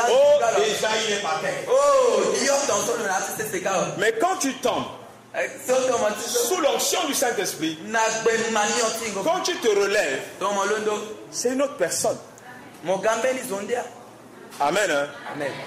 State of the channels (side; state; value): both; identical; correlation 1.00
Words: déjà il est par terre. Mais quand tu tombes sous l'onction du Saint-Esprit, quand tu te relèves, c'est une autre personne. Amen. Hein? Amen.